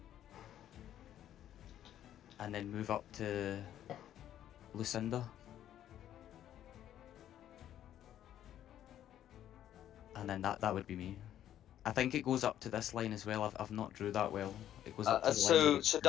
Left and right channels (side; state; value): right; quieter; 11.3 dB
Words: And then move up to Lucinda. And then that would be me. I think it goes up to this line as well. I've not drew that well. It goes up to the line. that So it's-